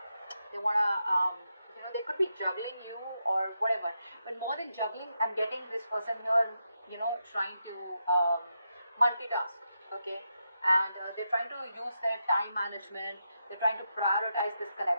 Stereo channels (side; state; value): both; inverted; correlation -0.85